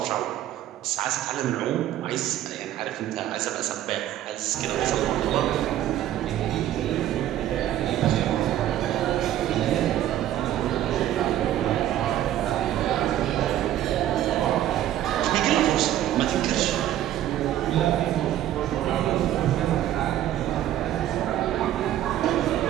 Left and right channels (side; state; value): left; quieter; 12.4 dB